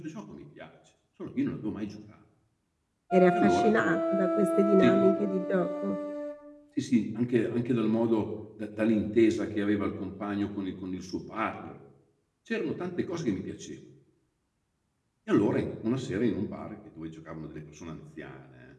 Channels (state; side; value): identical; both; correlation 1.00